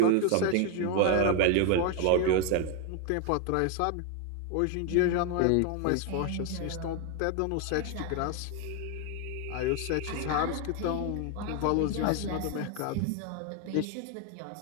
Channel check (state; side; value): different; both; correlation 0.01